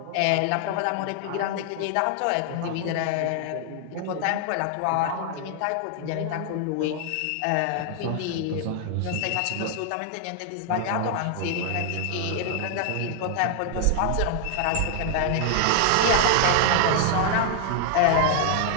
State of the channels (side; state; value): both; different; correlation 0.00